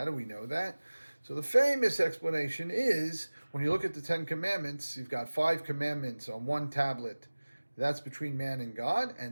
do we know that? So the famous explanation is, when you look at the 10 Commandments, you've got 5 commandments on one tablet. That's between man and God,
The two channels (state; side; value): inverted; both; correlation -1.00